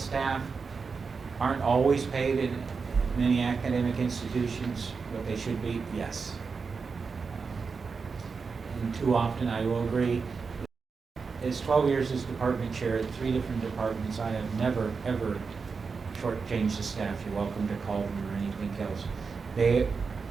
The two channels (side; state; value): left; quieter; 5.0 dB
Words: aren't always paid in many academic institutions what they should be? Yes. And too often I will agree. As 12 years as department chair at 3 different departments, I have never, ever shortchanged the staff. You're welcome to call them or anything else. They